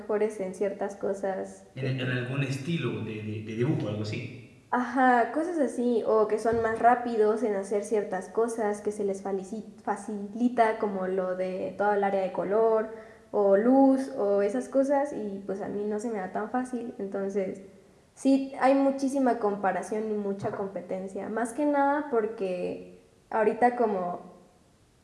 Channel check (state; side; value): identical; both; correlation 1.00